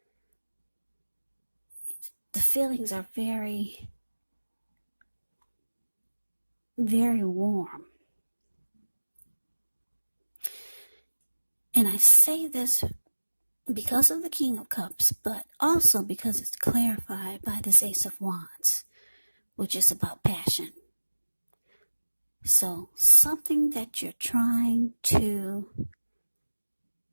The feelings are very, very warm. And I say this because of the King of Cups, but also because it's clarified by this Ace of Wands, which is about passion. So something that you're trying to,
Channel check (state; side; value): inverted; both; correlation -1.00